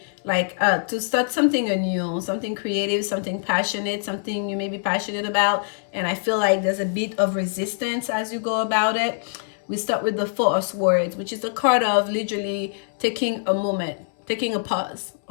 like to start something anew, something creative, something passionate, something you may be passionate about. And I feel like there's a bit of resistance as you go about it. We start with the Four of Swords, which is a card of literally taking a moment, taking a pause,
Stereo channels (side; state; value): right; silent; 63 dB below the other